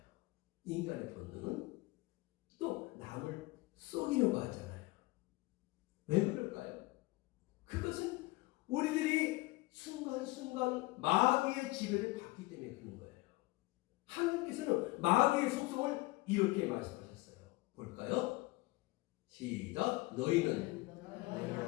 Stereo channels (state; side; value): quieter; right; 22.1 dB